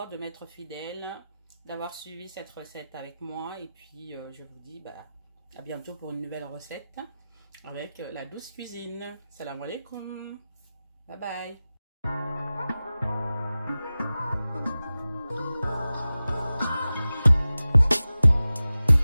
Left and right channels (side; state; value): both; inverted; correlation -0.96